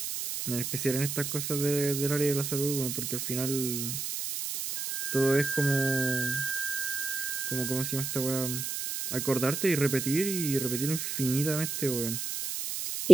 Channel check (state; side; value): noise; right; hiss, 2 dB below the sound